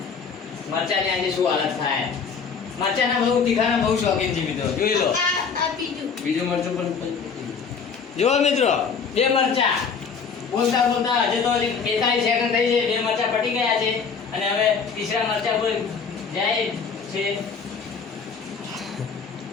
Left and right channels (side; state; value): right; quieter; 5.8 dB